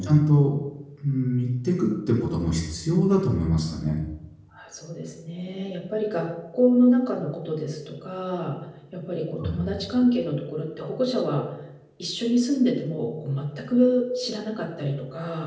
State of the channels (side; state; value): both; identical; correlation 1.00